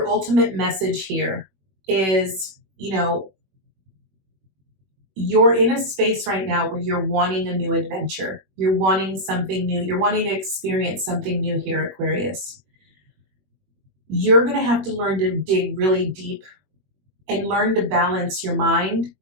ultimate message here is, you're in a space right now where you're wanting a new adventure. You're wanting something new. You're wanting to experience something new here, Aquarius. You're going to have to learn to dig really deep and learn to balance your mind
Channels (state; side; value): late; left; 21 ms